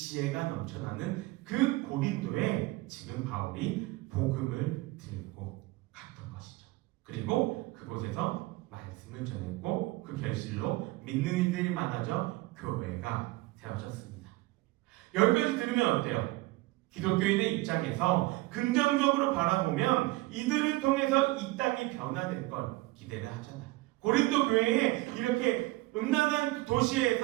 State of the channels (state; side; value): quieter; left; 20.8 dB